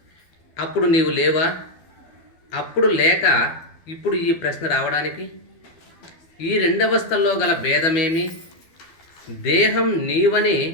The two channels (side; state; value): right; late; 12 ms